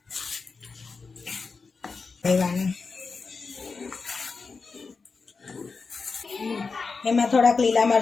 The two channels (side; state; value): right; quieter; 4.6 dB